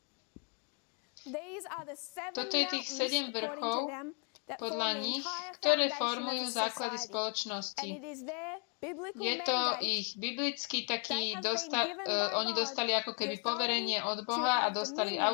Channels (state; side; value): quieter; right; 36.3 dB